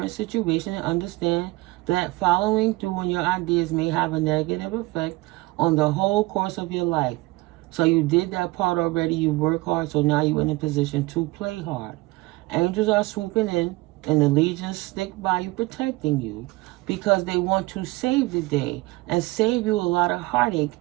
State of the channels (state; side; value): quieter; left; 21.3 dB